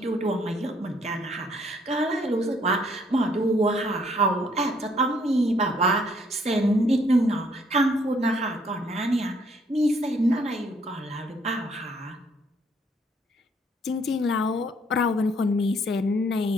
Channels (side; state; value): both; normal; correlation 0.66